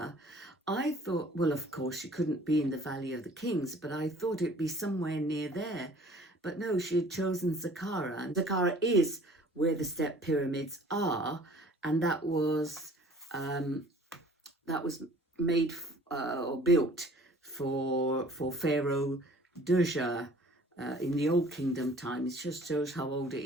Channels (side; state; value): both; normal; correlation 0.52